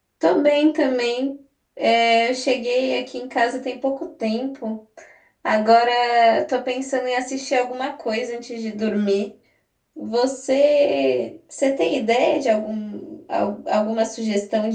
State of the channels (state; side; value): identical; both; correlation 1.00